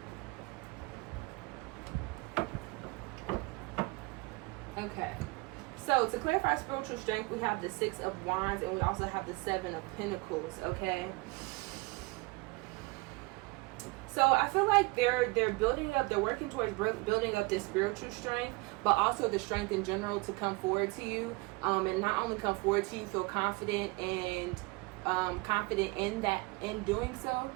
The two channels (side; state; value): left; quieter; 25.3 dB